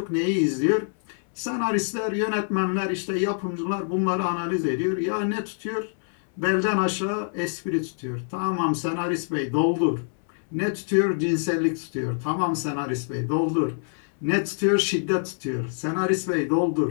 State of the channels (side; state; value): right; silent; 61 dB below the other